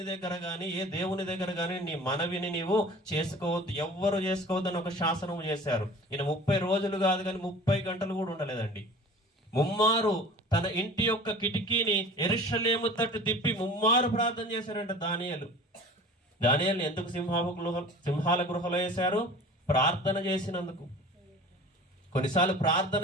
దగ్గర గాని ఏ దేవుని దగ్గర గాని నీ మనవిని నీవు చేసుకోవద్దు, ఎవ్వరు చేసుకోవద్దు అని ఒక శాసనము చేశారు. ఈయన 30 రోజులు కాదు కానీ 30 గంటలు కూడా ఉండలేదండి. ముమ్మారు తన ఇంటి యొక్క కిటికీని యెరూషలేము తట్టు తిప్పి ముమ్మారు ప్రార్థన చేశారంట దానియేలు. దానియేలుని ఎందుకు సింహాల గృహలో వేశారు? ప్రార్థన చేసినందుకు. కొన్నిసార్లు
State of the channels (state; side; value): normal; both; correlation 0.42